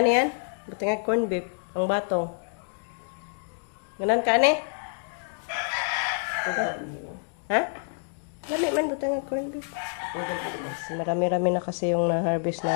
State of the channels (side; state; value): right; silent; digital silence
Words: niyan? Buti nga corn beef. Ang batong. Ganon ka ni? Ha? Lami man buti nga corn beef. Marami-rami na kasi yung na-harvest